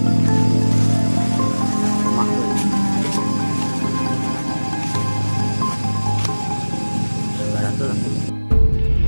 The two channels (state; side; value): inverted; both; correlation -1.00